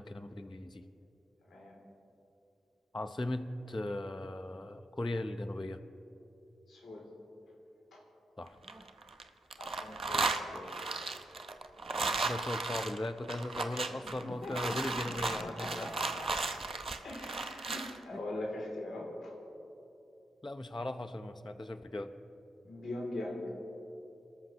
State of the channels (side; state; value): both; normal; correlation 0.80